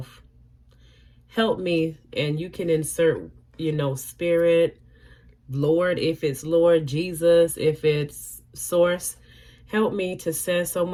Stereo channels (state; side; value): identical; both; correlation 1.00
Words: Help me, and you can insert, you know, spirit, Lord, if it's Lord, Jesus, if it's source. Help me to send so